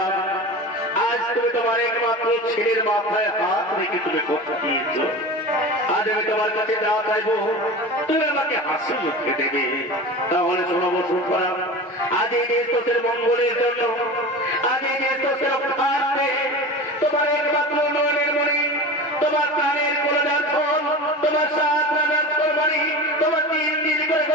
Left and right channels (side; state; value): both; normal; correlation 0.31